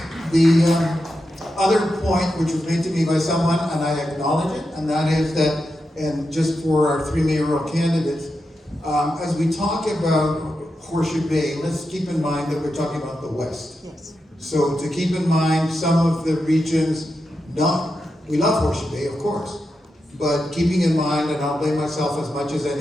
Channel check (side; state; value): both; normal; correlation 0.88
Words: The other point which was made to me by someone, and I acknowledge it, and that is that, and just for our three mayoral candidates, as we talk about Horseshoe Bay, let's keep in mind that we're talking about the West. Yes. So to keep in mind some of the regions, we love Horseshoe Bay, of course, but keeping in mind, and I'll blame myself as much as